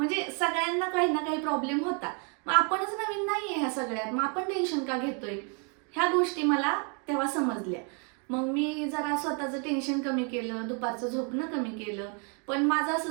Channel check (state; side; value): quieter; left; 37.8 dB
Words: सगळ्यांना काही ना काही प्रॉब्लेम होता. मग आपणच नवीन नाही आहे ह्या सगळ्यात, मग आपण टेन्शन का घेतोय. ह्या गोष्टी मला तेव्हा समजल्या. मग मी जरा स्वतःचं टेन्शन कमी केलं, दुपारचं झोपणं कमी केलं. पण माझं